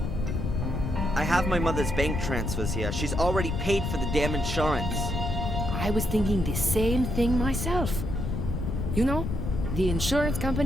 I have my mother's bank transfers here. She's already paid for the damn insurance. I was thinking the same thing myself. You know, the insurance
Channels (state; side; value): noise; left; rumble, 2 dB below the sound